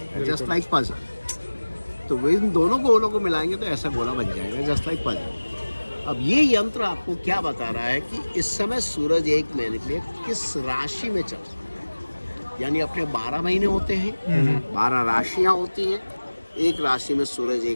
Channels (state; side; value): inverted; both; correlation -1.00